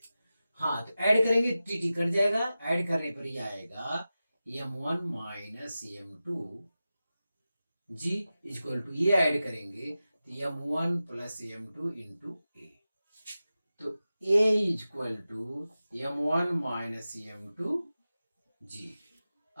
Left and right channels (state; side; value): inverted; both; correlation -0.94